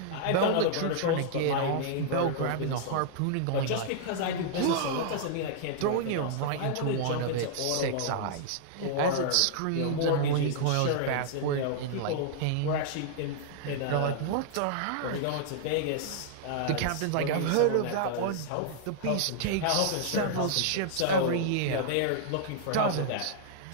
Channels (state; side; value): different; both; correlation -0.01